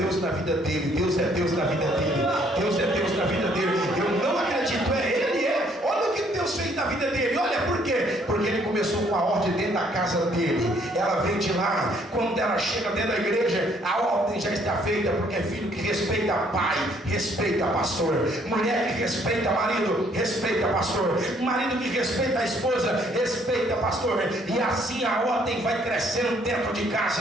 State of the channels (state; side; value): normal; both; correlation 0.65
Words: na vida dele, Deus é Deus na vida dele, Deus é Deus na vida dele. Eu não acredito, ele é. Olha o que Deus fez na vida dele. Olha por quê? Porque ele começou com a ordem dentro da casa dele. Ela vem de lá. Quando ela chega dentro da igreja, a ordem já está feita, porque é filho que respeita pai, respeita pastor. Mulher que respeita marido, respeita pastor. Marido que respeita a esposa, respeita pastor. E assim a ordem vai crescendo dentro de